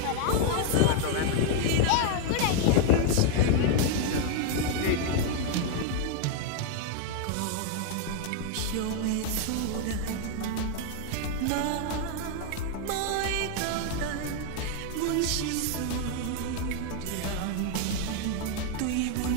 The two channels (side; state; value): both; different; correlation 0.00